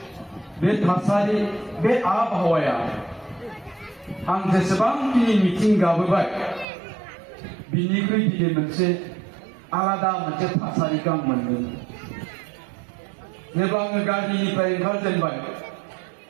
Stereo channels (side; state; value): left; drops out; at 6.7 s